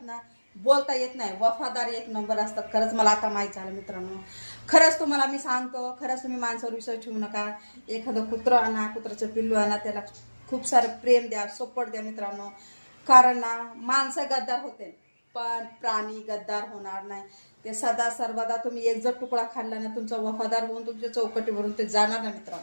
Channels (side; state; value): both; inverted; correlation -1.00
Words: ना बोलता येत नाही, वफादार एक नंबर असतात. खरंच मला आता माहीत झालं मित्रांनो. खरंच तुम्हाला मी सांगतो, खरंच तुम्ही माणसावर विश्वास ठेवू नका. एखादं कुत्रं आणा, कुत्राचं पिल्लू आणा, त्याला खूप सारं प्रेम द्या, सपोर्ट द्या मित्रांनो. कारण ना माणसं गद्दार होते पण प्राणी गद्दार होणार नाही. ते सदा सर्वदा तुम्ही एक जर तुकडा खाल्ला ना, तुमचा वफादार होऊन तुमच्या चौकटीवरून ते जाणार ना